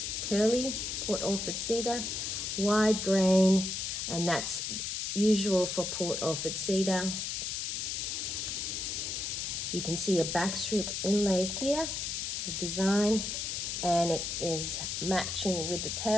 Curly Port Orford cedar, wide grain, and that's usual for Port Orford cedar. You can see a backstrip inlay here, the design, and it is matching with the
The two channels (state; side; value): noise; left; hiss, 3 dB below the sound